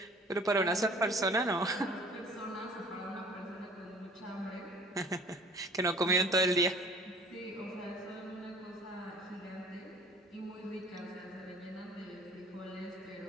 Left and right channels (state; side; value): normal; both; correlation 0.50